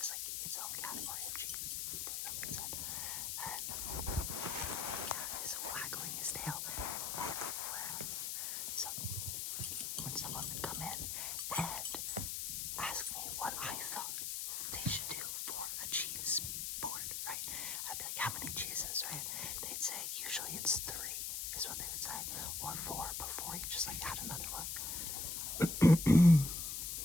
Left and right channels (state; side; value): noise; left; hiss, 2 dB below the sound